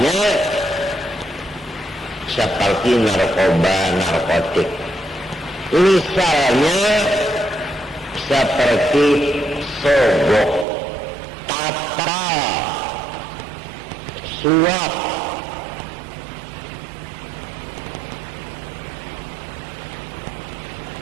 seperti narkoba, narkotik. Misalnya seperti sogok, tata, suap.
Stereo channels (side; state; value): left; drops out; at 10.7 s